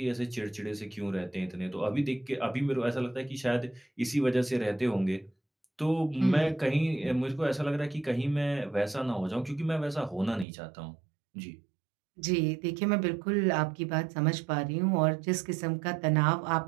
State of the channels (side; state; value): left; drops out; at 10.5 s